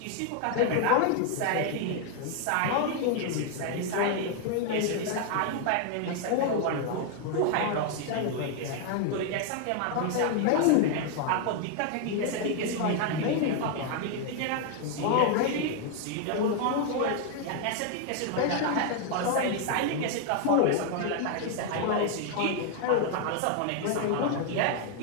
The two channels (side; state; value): both; different; correlation 0.00